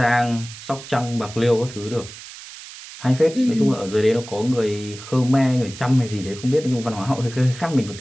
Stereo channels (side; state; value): right; noise; hiss, 15 dB below the sound